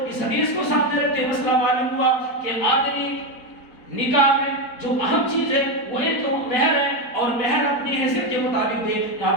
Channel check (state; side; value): late; right; 4.3 ms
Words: اس حدیث کو سامنے رکھتے مسئلہ معلوم ہوا کہ آدمی نکاح میں جو اہم چیز ہے وہ ایک تو مہر ہے، اور مہر اپنی حیثیت کے مطابق دے.